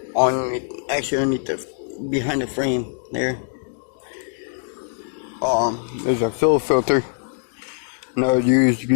actually underneath behind the frame there. There's a fuel filter. And that would usually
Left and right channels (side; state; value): right; silent; digital silence